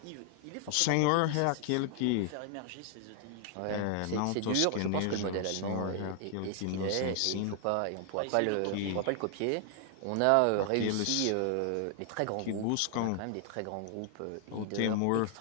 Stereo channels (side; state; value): both; different; correlation 0.00